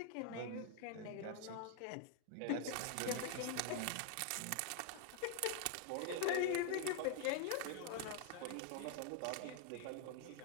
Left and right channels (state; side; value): different; both; correlation 0.00